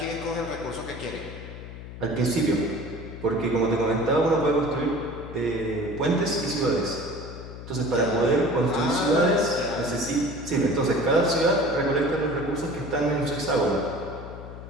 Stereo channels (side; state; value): left; noise; hum, 12 dB below the sound